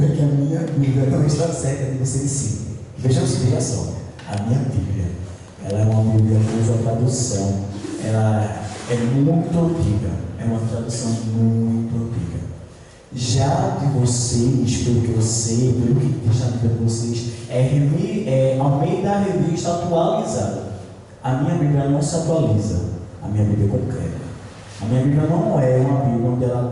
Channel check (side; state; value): both; identical; correlation 1.00